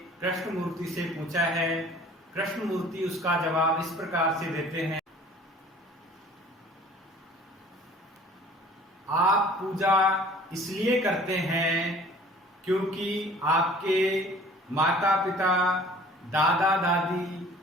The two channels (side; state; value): both; normal; correlation 0.49